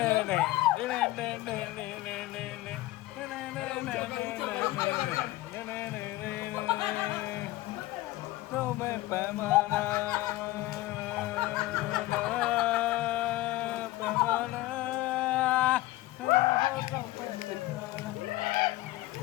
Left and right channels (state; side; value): quieter; right; 17.7 dB